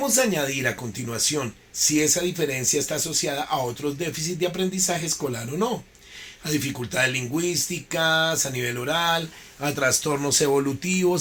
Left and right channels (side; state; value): both; identical; correlation 1.00